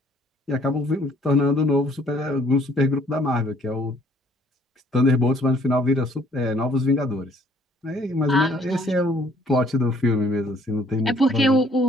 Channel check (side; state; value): both; normal; correlation 0.61